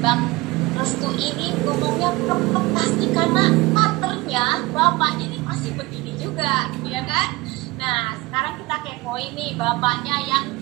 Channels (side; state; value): left; quieter; 21.3 dB